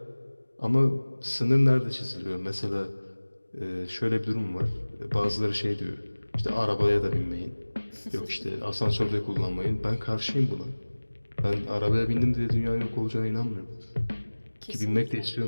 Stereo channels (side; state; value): both; inverted; correlation -1.00